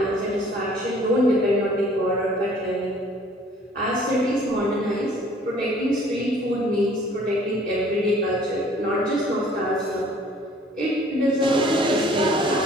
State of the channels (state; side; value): normal; both; correlation 0.55